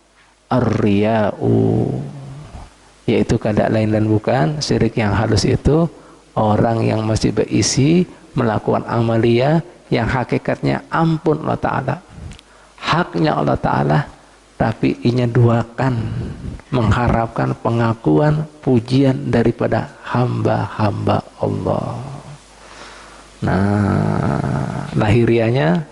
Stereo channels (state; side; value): identical; both; correlation 1.00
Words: ar-riya'u, yaitu kada lain dan bukan syirik yang halus itu orang yang masih berisi melakukan amalia yang hakikatnya ampun Allah Ta'ala, haknya Allah Ta'ala, tapi inya duakan mengharapkan pengakuan pujian daripada hamba-hamba Allah. Nah, lahirianya,